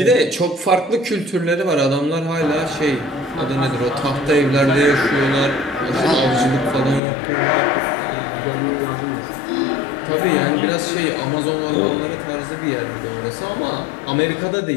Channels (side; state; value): right; drops out; at 7.0 s